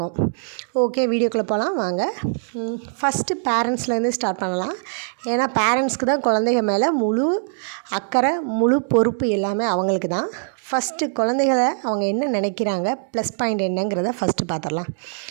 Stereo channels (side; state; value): left; silent; digital silence